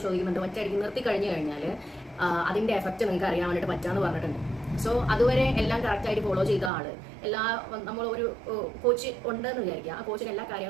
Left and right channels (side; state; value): left; drops out; at 6.7 s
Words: ചോദിക്കുന്നുണ്ട്, ഒറ്റയടിക്ക് നിർത്തി കഴിഞ്ഞു കഴിഞ്ഞാൽ അതിന്റെ എഫക്റ്റ് നിങ്ങൾക്ക് അറിയാൻ വേണ്ടിയിട്ട് പറ്റാന്ന് പറഞ്ഞിട്ടുണ്ട്. സോ അതുവരെ എല്ലാം കറക്റ്റായിട്ട് ഫോളോ ചെയ്ത ആള് നമ്മൾ ഒരു കോച്ച് ഉണ്ടെന്ന് വിചാരിക്കുക. ആ കോച്ചിന് എല്ലാ